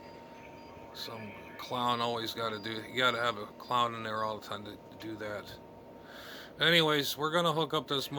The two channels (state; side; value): identical; both; correlation 1.00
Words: Some clown always got to do. You got to have a clown in there all the time to do that. Anyways, we're gonna hook up this